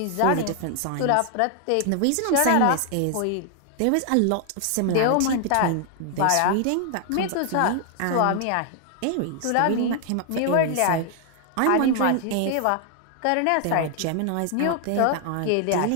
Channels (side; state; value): both; different; correlation 0.00